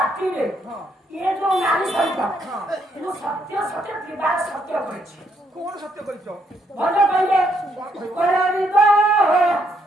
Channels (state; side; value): normal; both; correlation 0.73